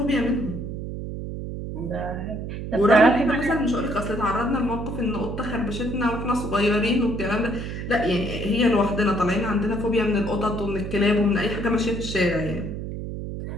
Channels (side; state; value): right; noise; hum, 6 dB below the sound